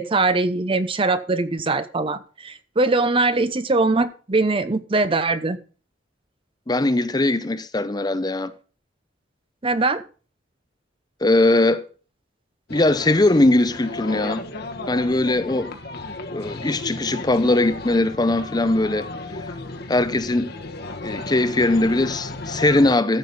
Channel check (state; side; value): normal; both; correlation 0.54